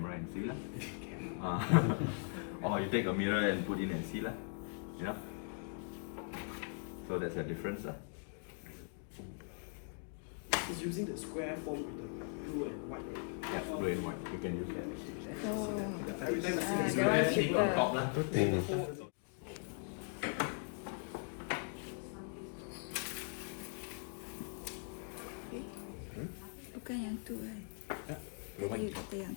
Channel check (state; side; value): silent; right; 51 dB below the other